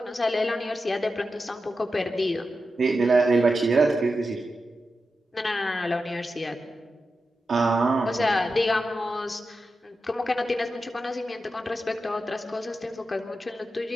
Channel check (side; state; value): both; normal; correlation 0.90